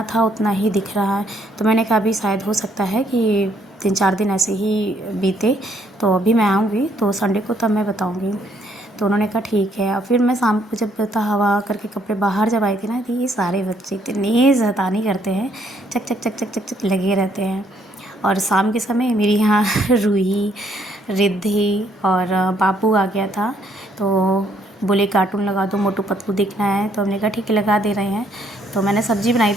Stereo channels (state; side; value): normal; both; correlation 0.69